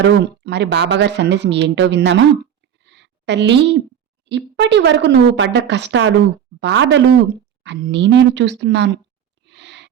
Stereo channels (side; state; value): left; quieter; 9.1 dB